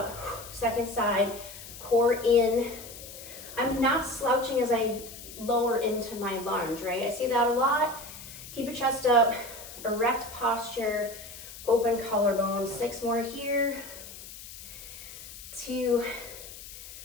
Second side, core in. I'm not slouching as I lower into my lunge, right? I see that a lot. Keep your chest up, erect posture, open collarbone. 6 more here. 2,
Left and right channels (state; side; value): noise; left; hiss, 14 dB below the sound